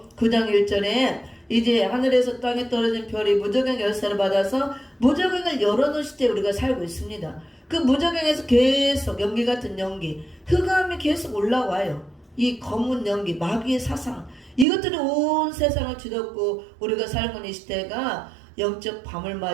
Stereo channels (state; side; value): drops out; left; at 14.7 s